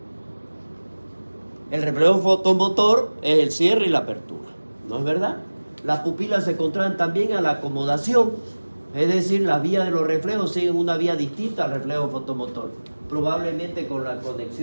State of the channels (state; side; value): inverted; both; correlation -1.00